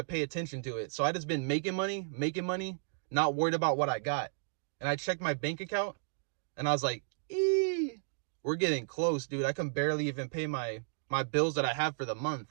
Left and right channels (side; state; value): left; silent; digital silence